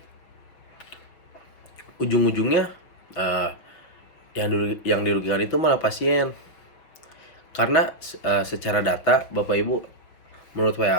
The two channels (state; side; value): late; right; 6.0 ms